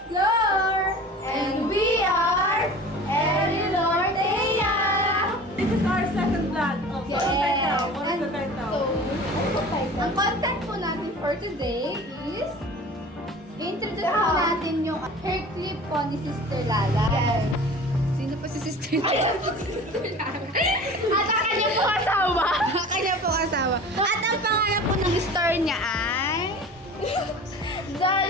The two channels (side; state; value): both; normal; correlation 0.40